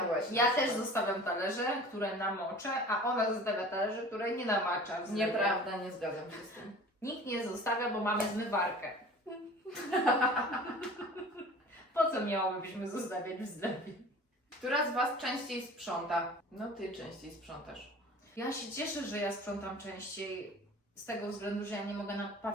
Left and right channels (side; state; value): both; normal; correlation 0.42